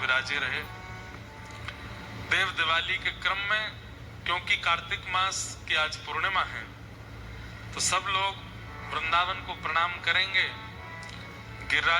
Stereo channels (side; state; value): both; identical; correlation 1.00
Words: रहे। देव दिवाली के क्रम में, क्योंकि कार्तिक मास की आज पूर्णिमा है, तो सब लोग वृंदावन को प्रणाम करेंगे,